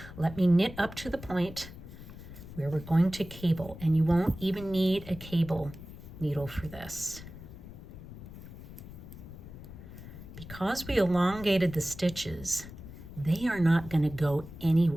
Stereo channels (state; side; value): noise; left; rumble, 14 dB below the sound